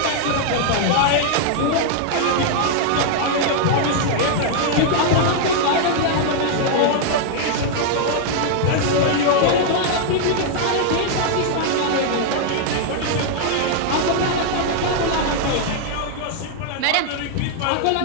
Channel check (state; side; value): different; both; correlation 0.00